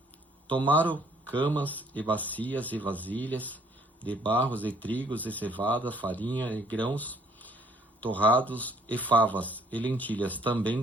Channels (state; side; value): normal; both; correlation 0.61